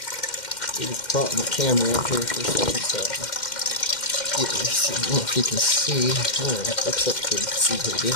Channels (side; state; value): right; late; 2.1 ms